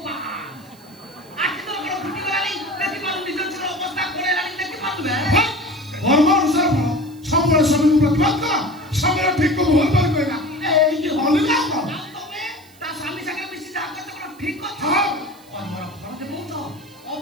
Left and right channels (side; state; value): right; noise; hiss, 26 dB below the sound